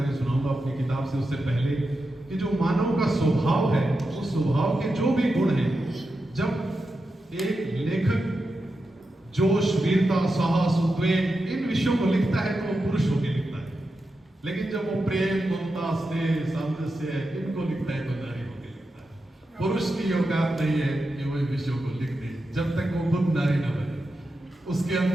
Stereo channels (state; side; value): normal; both; correlation 0.89